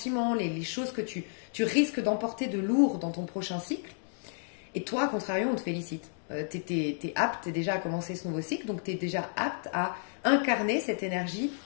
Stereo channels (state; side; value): silent; right; digital silence